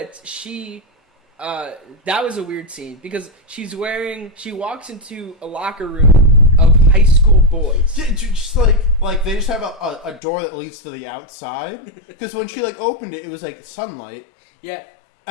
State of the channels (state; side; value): drops out; right; at 10.2 s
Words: she, that was a weird scene because she walks into a locker room of high school boys. Just like they just have a door that leads to the outside. Because when she like opened it, it was like sunlight. Yeah.